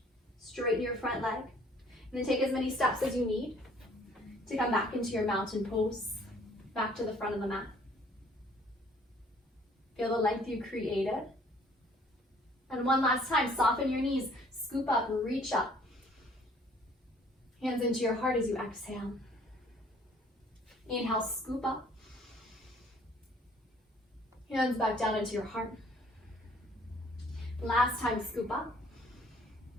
Straighten your front leg, and then take as many steps as you need to come back into your mountain pose, back to the front of the mat. Feel the length you created. And one last time, soften your knees, scoop up, reach up. Hands into your heart as you exhale. Inhale, scoop up. Hands back down into your heart. Last time, scoop up.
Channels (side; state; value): both; normal; correlation 0.58